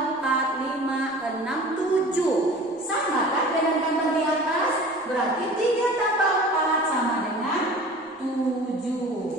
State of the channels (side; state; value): both; normal; correlation 0.42